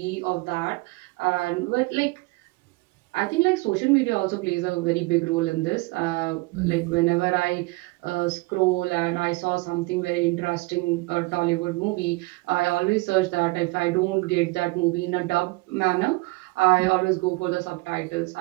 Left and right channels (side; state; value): left; quieter; 24.1 dB